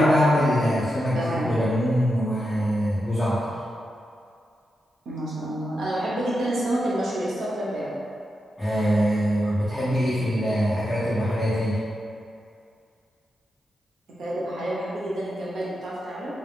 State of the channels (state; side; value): normal; both; correlation 0.87